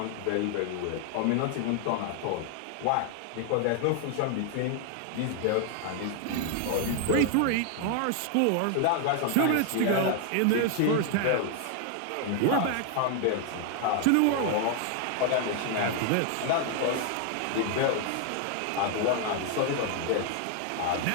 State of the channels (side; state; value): both; different; correlation 0.00